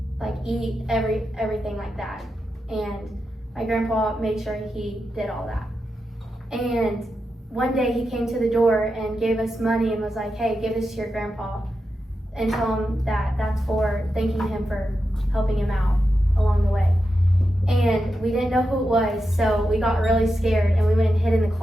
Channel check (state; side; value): normal; both; correlation 0.88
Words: eat, everything like that. And my grandpa made sure he did all that. And one day he came to the door and gave us money and was like, "Hey, give this to your grandpa and tell him that that's for thanking him for helping him out along the way." And we didn't know who it was, so we got really scared and we went and hid in the